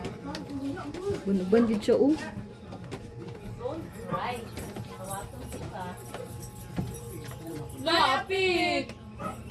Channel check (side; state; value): both; identical; correlation 1.00